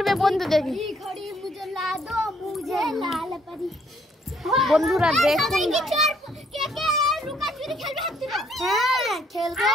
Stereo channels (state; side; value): normal; both; correlation 0.67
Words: বন্ধুদেরকে? ঘড়ি মুঝে লা দো, মুঝে লাল পরি। বন্ধুরা দেখুন, কে কে লুকাচুরি খেলবে হাত তুলো। হ্যাঁ, খেলবো।